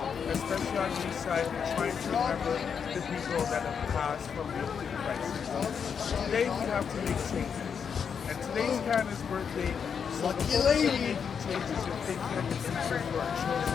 especially on the east side, are trying to remember the people that have passed from the opioid crisis. Today we have to make changes. And today's Canada's birthday, so the focus on making changes and thinking of the future for our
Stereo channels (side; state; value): right; quieter; 6.9 dB